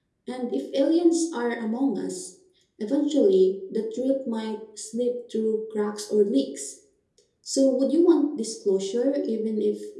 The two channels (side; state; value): both; identical; correlation 1.00